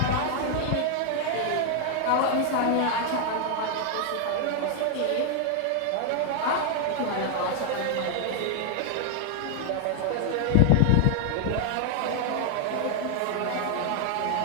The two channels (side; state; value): both; different; correlation 0.00